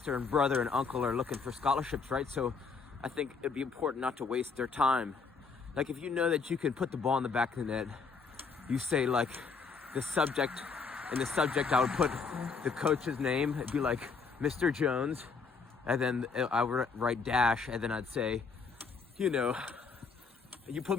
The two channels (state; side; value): quieter; right; 5.1 dB